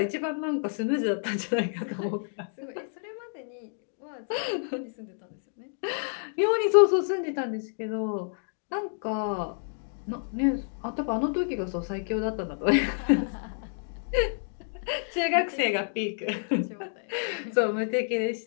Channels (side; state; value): right; silent; digital silence